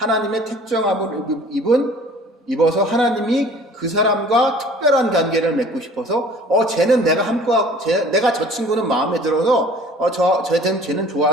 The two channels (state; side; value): normal; both; correlation 0.49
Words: 택정함을 입어서 하나님이 그 사람과 특별한 관계를 맺고 싶어서, 쟤는 내가 저 친구는 마음에 들어서, 쟤는